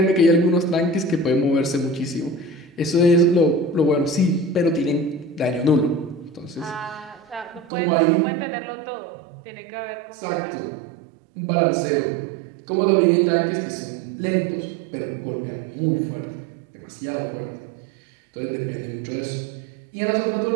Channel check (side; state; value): left; drops out; at 7.7 s